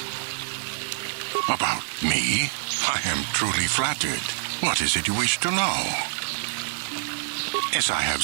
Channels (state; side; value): silent; left; 61 dB below the other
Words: About me? I am truly flattered. What is it you wish to know? As I